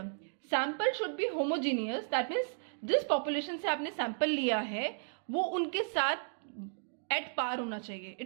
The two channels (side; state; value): left; silent; digital silence